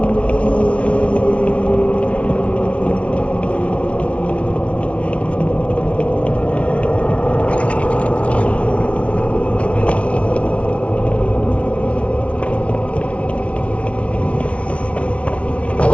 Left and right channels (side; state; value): right; late; 0.063 ms